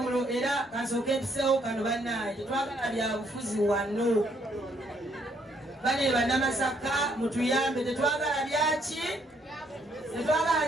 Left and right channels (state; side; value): normal; both; correlation 0.70